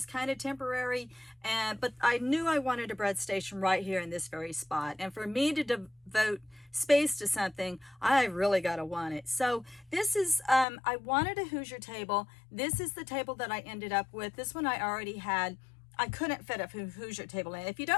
kind of temporary, but I knew I wanted a bread station right here in this very spot. And for me to devote space to something, I really got to want it. So this is, I wanted a Hoosier table. This is the table that I ended up with. This one I already had. I couldn't fit a Hoosier table in. If you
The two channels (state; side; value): drops out; right; at 10.7 s